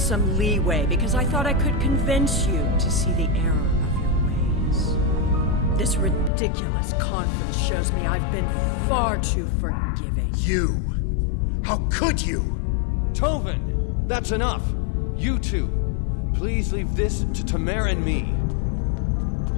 leeway because I thought I could convince you to see the error of your ways. This ridiculous conference shows me I've been far too forgiving. You! How could you? Tovin! That's enough! You two, please leave this to Tamer and me.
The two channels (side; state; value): right; drops out; at 6.3 s